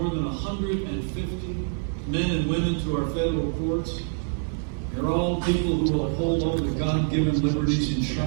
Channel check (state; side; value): silent; left; 61 dB below the other